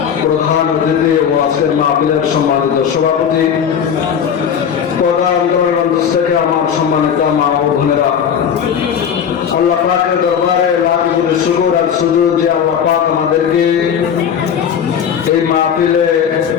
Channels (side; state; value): right; quieter; 7.9 dB